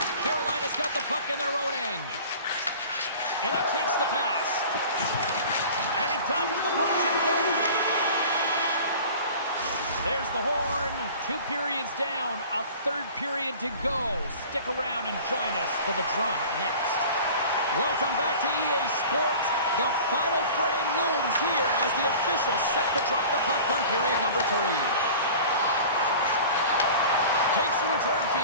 Carolina's got the puck in their own end. And he takes the pass. And he dodges the punch and goal. There's the horn. 2 periods down. A third period to go. Stick around and join us for the drama next. Welcome back to EA Sports. The final frame looms here as the officials set to drop the puck on period number 3. Takes the return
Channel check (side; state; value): both; inverted; correlation -0.41